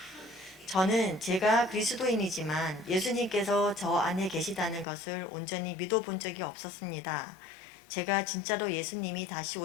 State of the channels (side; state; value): right; drops out; at 4.9 s